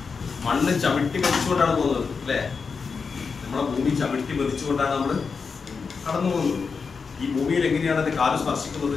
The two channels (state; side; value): quieter; right; 5.2 dB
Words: മണ്ണ് ചവിട്ടി പതിച്ചുകൊണ്ടാണ് പോകുന്നത് അല്ലേ? നമ്മളെ ഭൂമി ചവിട്ടി പതിച്ചുകൊണ്ടാണ് നമ്മൾ കടന്നു പോകുന്നത്. ഈ ഭൂമിയിൽ എങ്ങനെയാണ് എന്റെ കാല് സ്പർശിക്കുന്നത്,